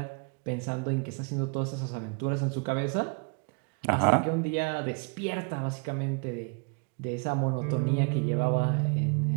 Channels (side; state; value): left; quieter; 35.8 dB